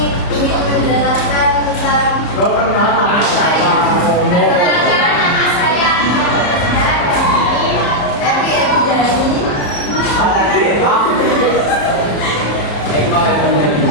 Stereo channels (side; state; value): right; late; 34 ms